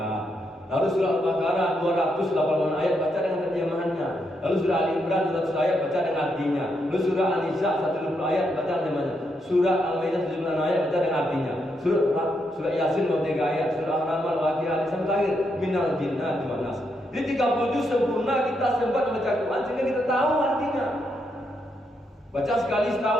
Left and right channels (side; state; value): both; normal; correlation 0.80